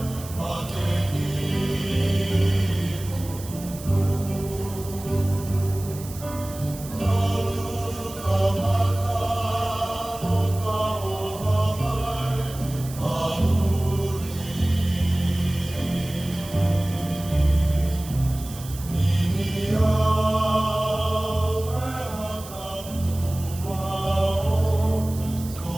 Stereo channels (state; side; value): noise; right; hiss, 15 dB below the sound